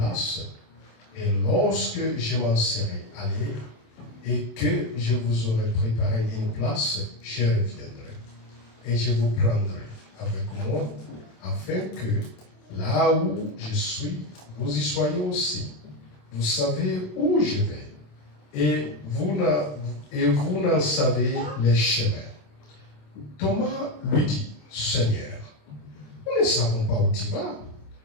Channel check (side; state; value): right; late; 27 ms